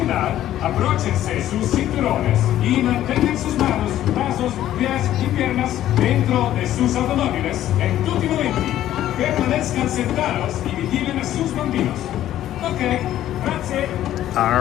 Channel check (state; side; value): quieter; right; 12.7 dB